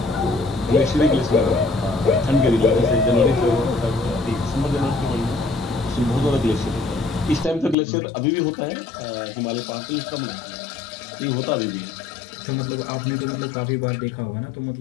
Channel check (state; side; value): drops out; right; at 7.8 s